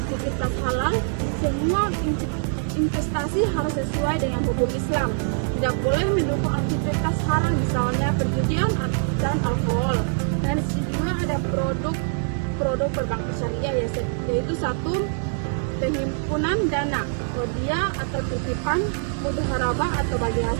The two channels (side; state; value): left; silent; 63 dB below the other